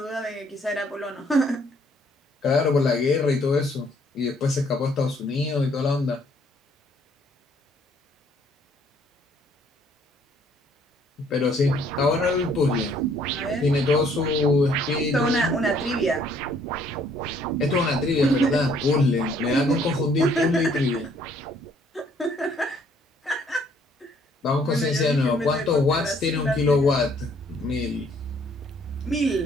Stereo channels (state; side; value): normal; both; correlation 0.63